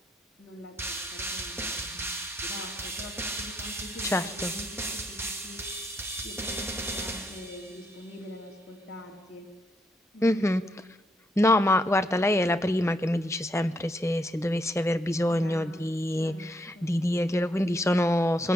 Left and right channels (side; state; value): both; normal; correlation 0.76